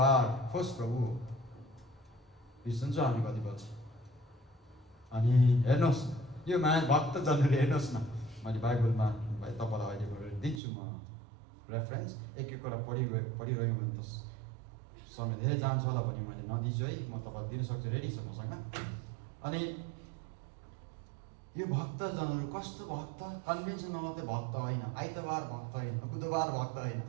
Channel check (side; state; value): left; drops out; at 10.6 s